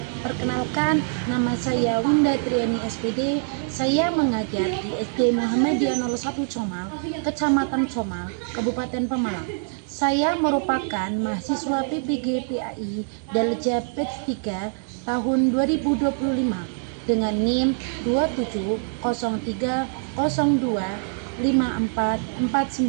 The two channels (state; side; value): silent; left; 62 dB below the other